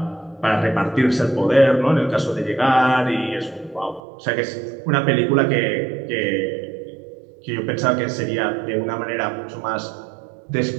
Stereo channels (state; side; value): drops out; left; at 4.0 s